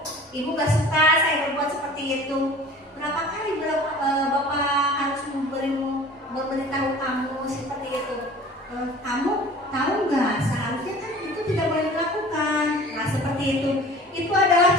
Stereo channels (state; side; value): normal; both; correlation 0.44